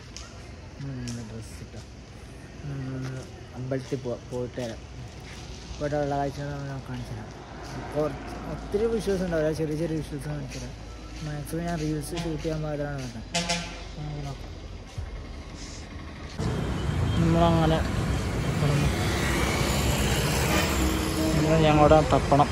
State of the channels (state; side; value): identical; both; correlation 1.00